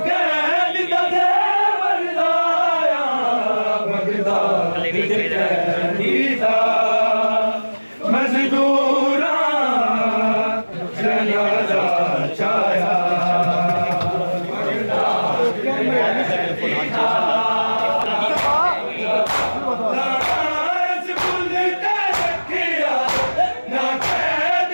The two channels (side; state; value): both; inverted; correlation -1.00